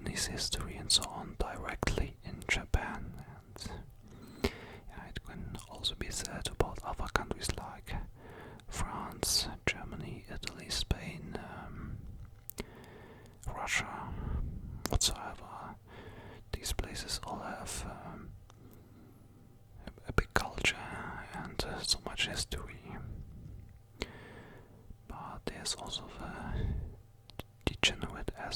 history and so on directly in Japan, and yeah, it can also be said about other countries like France, Germany, Italy, Spain, Russia, whatsoever. These places all have a big culture and so much history. But there's also the degenerate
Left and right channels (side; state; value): both; identical; correlation 1.00